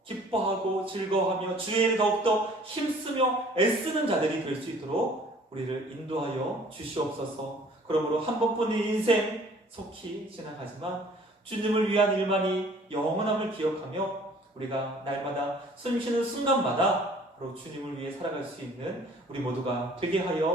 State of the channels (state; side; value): normal; both; correlation 0.53